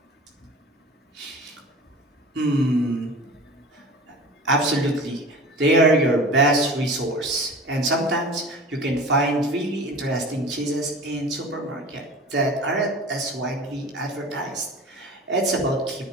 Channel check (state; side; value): normal; both; correlation 0.37